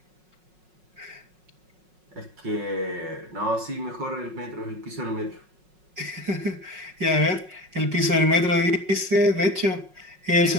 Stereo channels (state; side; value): late; left; 5.4 ms